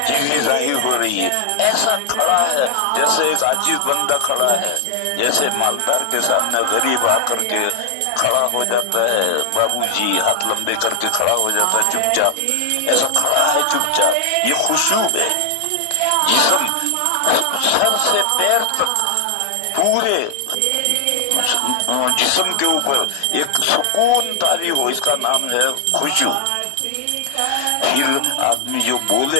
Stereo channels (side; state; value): both; different; correlation 0.00